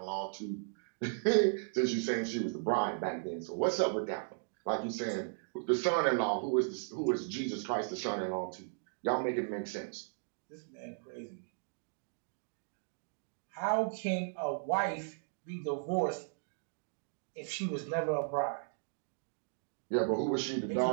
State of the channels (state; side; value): silent; left; digital silence